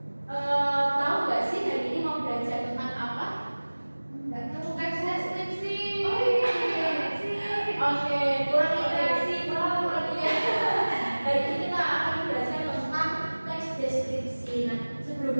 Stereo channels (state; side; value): inverted; both; correlation -1.00